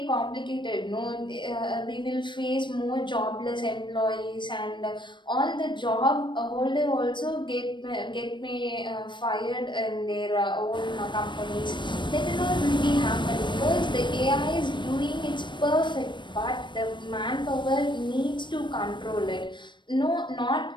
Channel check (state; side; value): late; right; 0.22 ms